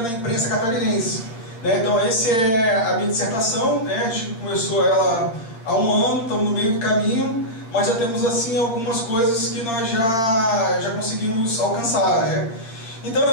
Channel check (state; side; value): late; right; 8.7 ms